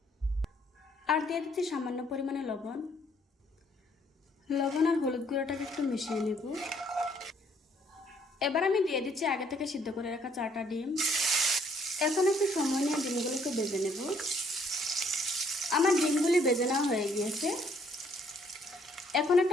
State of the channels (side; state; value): both; normal; correlation 0.66